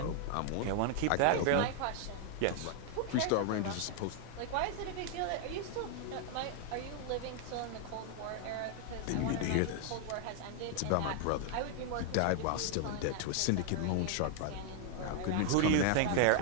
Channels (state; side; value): different; both; correlation 0.00